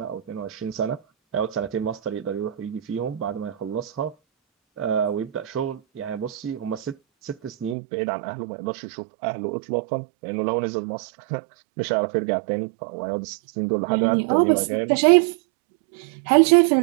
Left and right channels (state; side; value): drops out; left; at 7.8 s